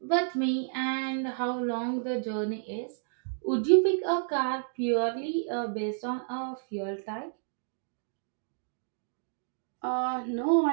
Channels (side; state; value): left; silent; digital silence